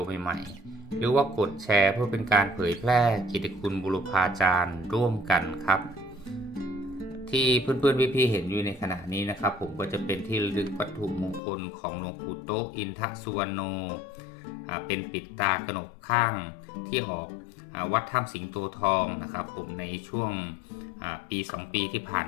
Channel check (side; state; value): right; drops out; at 11.4 s